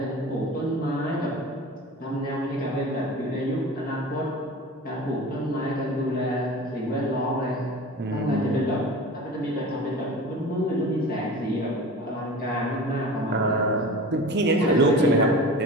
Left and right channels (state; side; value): normal; both; correlation 0.35